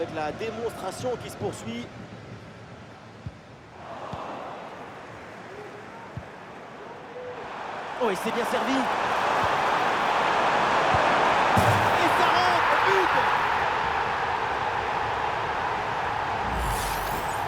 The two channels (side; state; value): both; identical; correlation 1.00